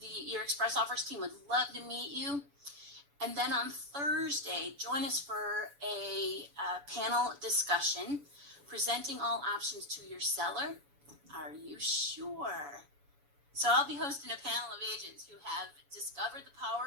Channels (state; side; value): late; left; 7.0 ms